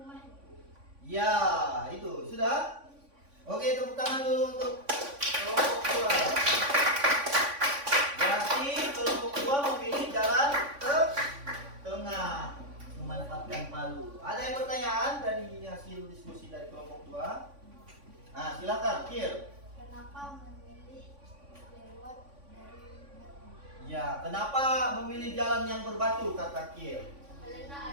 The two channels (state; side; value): late; left; 3.5 ms